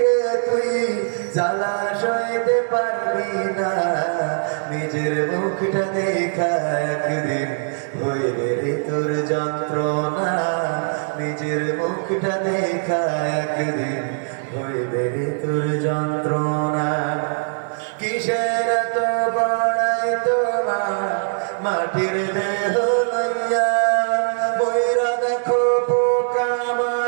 রে তুই, জ্বালা সইতে পারবি না। নিজের মুখটা দেখা একদিন হইবে রে তোর যন্ত্রণা। নিজের মুখটা দেখা একদিন হইবে রে তোর যন্ত্রণা। কিসের এত বড়াই তোমার মাটির দেহ লইয়া, বইরা দেখো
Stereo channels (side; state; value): left; silent; digital silence